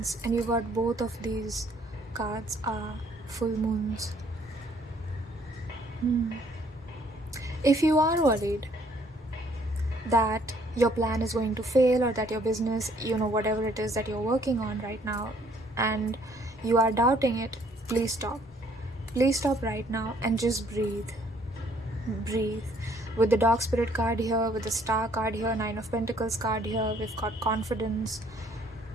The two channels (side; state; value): both; normal; correlation 0.63